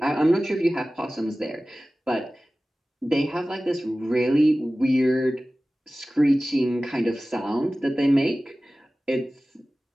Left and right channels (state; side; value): normal; both; correlation 0.97